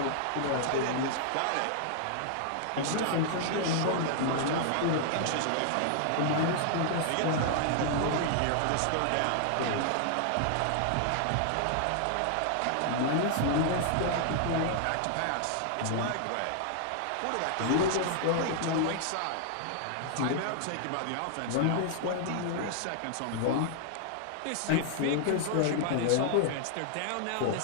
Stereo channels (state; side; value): different; both; correlation -0.01